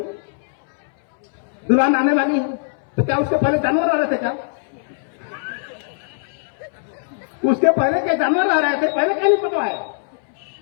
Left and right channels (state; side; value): silent; right; 63 dB below the other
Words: दुल्हन आने वाली है तो क्या उसके पहले जानवर आ रहे थे क्या? उसके पहले क्या जानवर आ रहे थे? पहले क्या नहीं पटवाए?